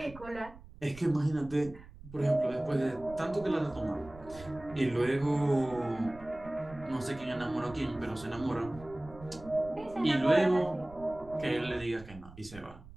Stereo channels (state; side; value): noise; right; rumble, 18 dB below the sound